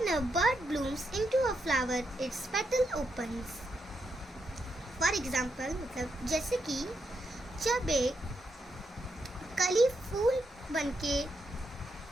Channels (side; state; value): both; normal; correlation 0.81